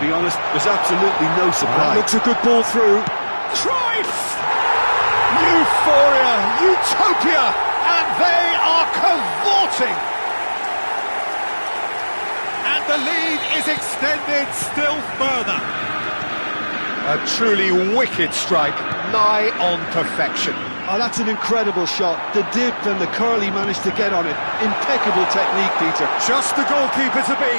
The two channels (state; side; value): inverted; both; correlation -1.00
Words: honest. There's absolutely no surprise. Looks a good ball through. Cruyff! Euphoria, utopia, and they are cavorting. And the lead is extended still further. A truly wicked strike, nigh on perfection. Oh, that's an incredible shot. The dip and the curl he managed to get on it. Impeccable technique, Peter. Just the goalkeeper to